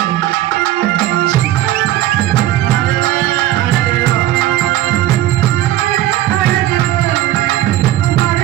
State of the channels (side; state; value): left; quieter; 13.9 dB